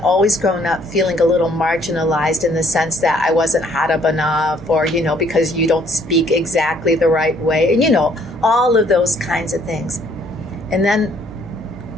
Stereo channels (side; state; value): both; normal; correlation 0.63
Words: grown up feeling a little marginalized in the sense that I wasn't Arab enough, or, because you don't speak exactly the right way, and, all of those kinds of things. And then